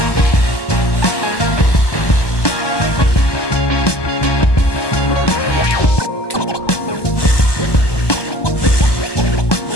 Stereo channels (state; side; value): late; right; 1.2 ms